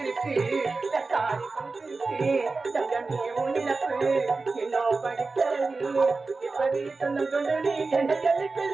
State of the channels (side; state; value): left; quieter; 3.9 dB